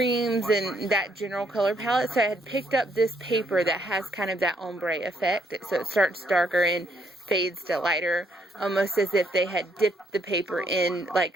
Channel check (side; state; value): both; normal; correlation 0.71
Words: and that general color palette. So I had picked up this paper that has kind of that ombre effect. So it starts darker and fades to lighter, almost as if they had dipped the paper in